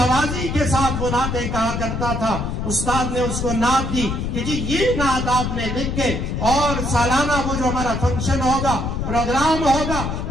کے ساتھ وہ نعتیں کہا کرتا تھا استاد نے اس کو نعت دی کہ جی یہ نعت آپ نے لکھ کے اور سالانہ وہ جو ہمارا فنکشن ہوگا پروگرام ہوگا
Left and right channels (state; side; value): noise; left; rumble, 2 dB below the sound